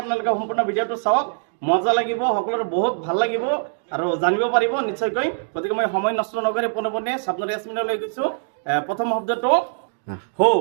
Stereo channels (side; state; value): left; silent; digital silence